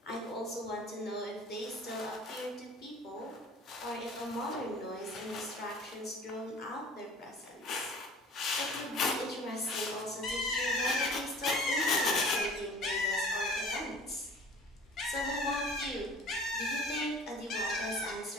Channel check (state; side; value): normal; both; correlation 0.46